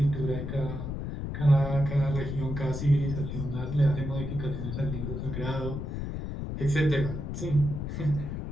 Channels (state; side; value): noise; left; rumble, 5 dB below the sound